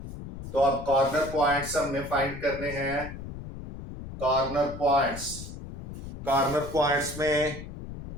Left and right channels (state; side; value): noise; left; rumble, 10 dB below the sound